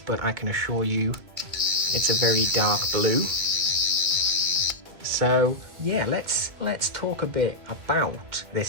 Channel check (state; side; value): late; left; 2.1 ms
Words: I can assure you it's a very dark blue. So yeah, let's talk a bit about this